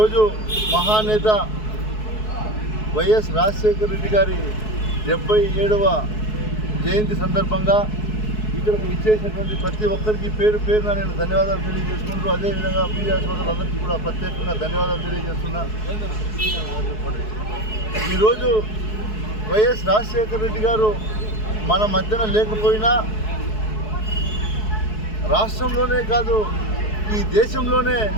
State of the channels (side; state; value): right; late; 4.7 ms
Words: మహానేత వైఎస్ రాజశేఖర రెడ్డి గారి 77వ జయంతి సందర్భంగా ఇక్కడికి ఇచ్చేసినటువంటి ప్రతి ఒక్కరికి పేరు పేరున నేను ధన్యవాదాలు తెలియజేసుకుంటూ, అదేవిధంగా మీడియా సోదరులందరికీ కూడా ప్రత్యేకంగా ధన్యవాదాలు తెలియజేస్తున్నా. ఈరోజు వైఎస్ రాజశేఖర రెడ్డి గారు మన మధ్యన లేకపోయినా రాష్ట్రంలోనే కాదు ఈ దేశంలోనే